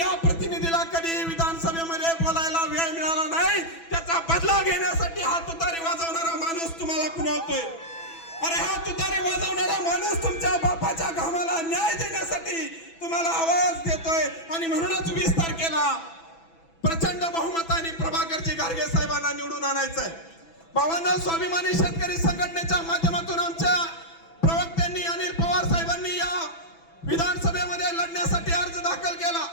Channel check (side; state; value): right; late; 6.0 ms